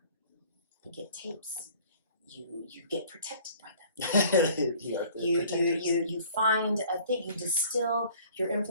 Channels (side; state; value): both; inverted; correlation -0.52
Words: You get tapes. You get protected by them. You find a thing. You distill your